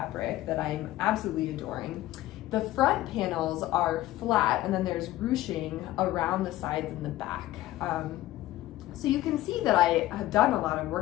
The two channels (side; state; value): right; quieter; 15.7 dB